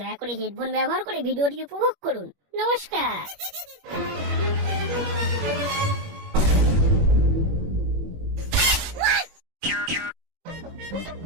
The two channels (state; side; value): late; left; 21 ms